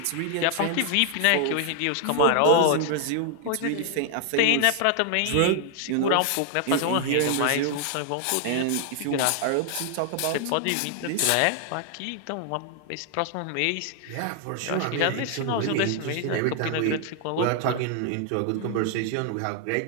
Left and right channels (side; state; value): both; different; correlation 0.00